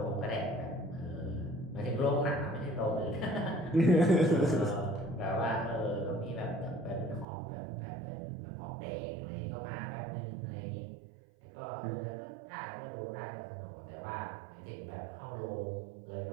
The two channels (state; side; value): drops out; left; at 7.2 s